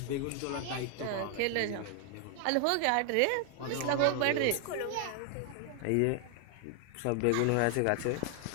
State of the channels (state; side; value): different; both; correlation 0.00